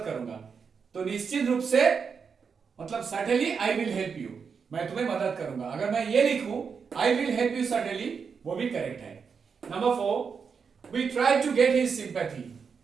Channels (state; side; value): quieter; left; 6.0 dB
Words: करूंगा तो निश्चित रूप से मतलब certainly I will help you मैं तुम्हें मदद करूंगा अगर मैं ये लिखूं I will help you certainly वो भी करेक्ट है number 4 we try to get his sympathy